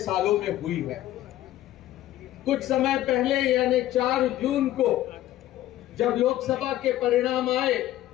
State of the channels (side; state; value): right; quieter; 14.0 dB